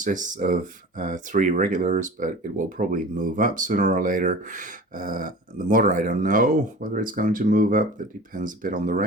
of 3 regulars, but it will probably move up sooner or later. The mortar, I don't know whether it's going to move up. That depends a bit on the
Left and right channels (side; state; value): both; normal; correlation 0.38